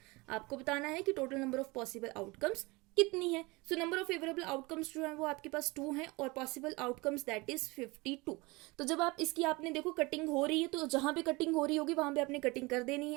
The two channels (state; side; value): quieter; left; 24.3 dB